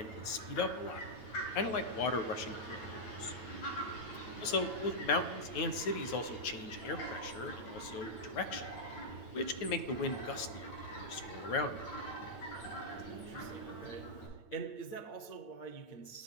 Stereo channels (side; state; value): right; late; 8.9 ms